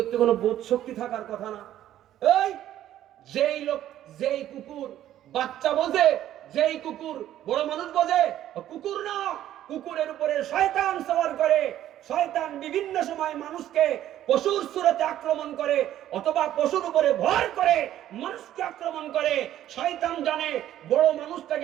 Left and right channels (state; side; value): quieter; left; 12.3 dB